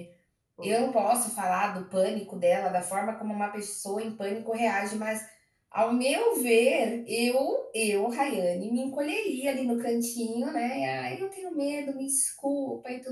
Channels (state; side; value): identical; both; correlation 1.00